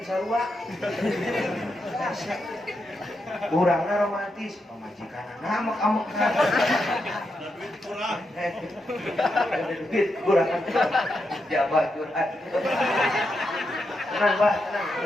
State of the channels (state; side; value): normal; both; correlation 0.84